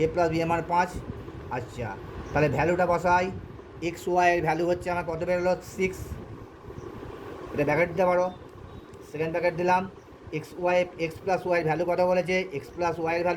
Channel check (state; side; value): identical; both; correlation 1.00